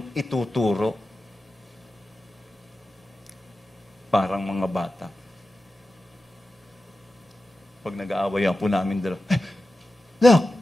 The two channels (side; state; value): both; normal; correlation 0.93